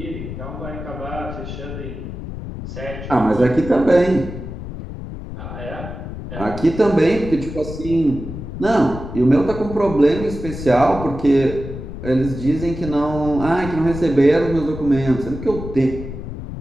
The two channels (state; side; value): noise; left; rumble, 9 dB below the sound